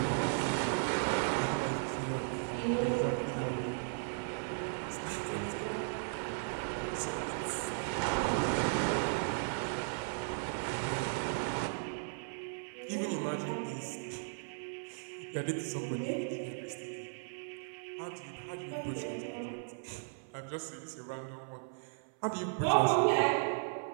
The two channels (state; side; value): silent; left; 54 dB below the other